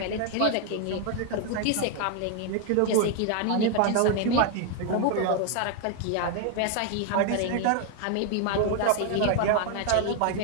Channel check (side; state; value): both; different; correlation 0.01